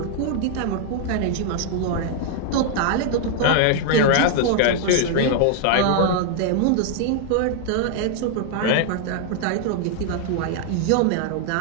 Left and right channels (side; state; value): both; different; correlation 0.00